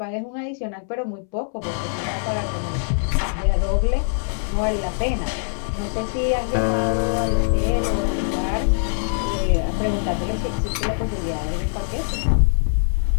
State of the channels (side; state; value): right; silent; 64 dB below the other